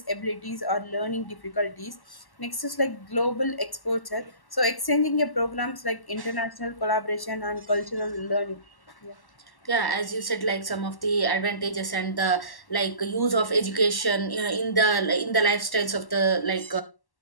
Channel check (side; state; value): right; late; 1.1 ms